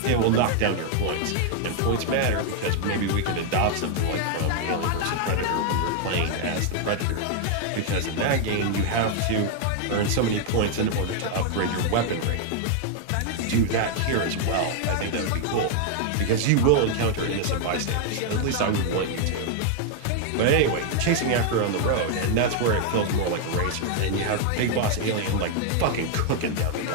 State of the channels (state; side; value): different; both; correlation 0.00